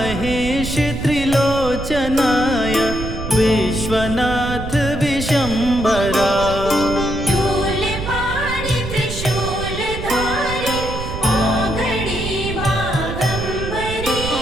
त्रिलोचनाय विश्वनाथ विशंभरा शूलपाणि त्रिशूलधारी औघड़ी बाघंबरी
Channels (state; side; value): noise; right; rumble, 7 dB below the sound